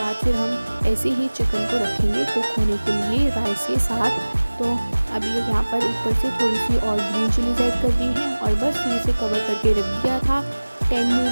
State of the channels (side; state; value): both; inverted; correlation -1.00